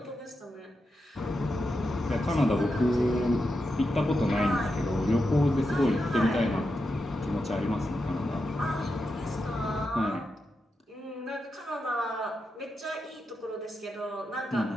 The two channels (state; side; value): normal; both; correlation 0.87